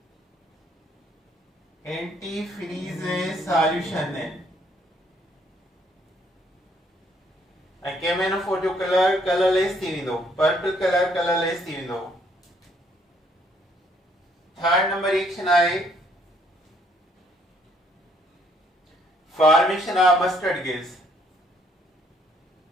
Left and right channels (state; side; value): normal; both; correlation 0.67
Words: Antifreeze solution है. KMnO4 जो कलर कलरलेस थी वेंदो, पर्पल कलर कलरलेस थी वेंदो. थर्ड नंबर रिएक्शन आहे formation of mustard gas.